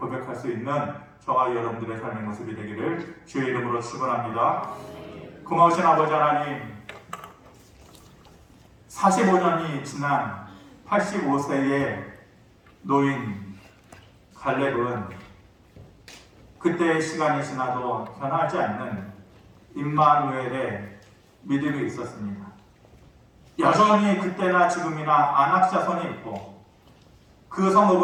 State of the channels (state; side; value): identical; both; correlation 1.00